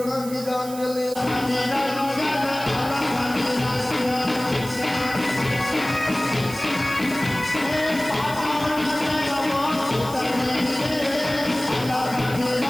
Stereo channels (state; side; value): noise; right; hiss, 14 dB below the sound